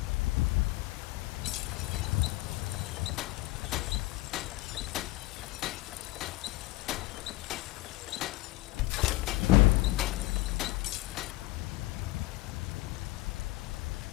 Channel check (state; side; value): quieter; right; 19.3 dB